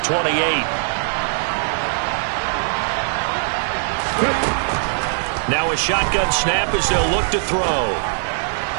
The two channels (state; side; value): silent; left; digital silence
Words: 28. Now a shotgun snap as they'll look to throw.